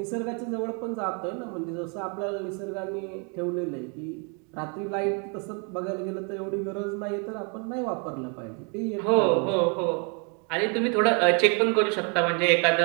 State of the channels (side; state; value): left; quieter; 36.5 dB